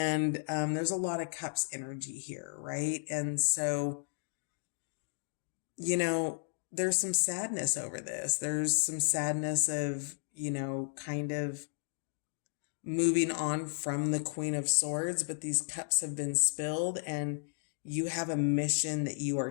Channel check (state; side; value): silent; right; digital silence